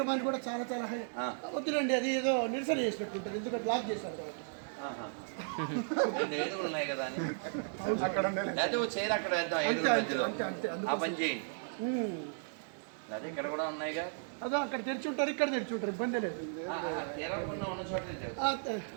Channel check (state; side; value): silent; left; digital silence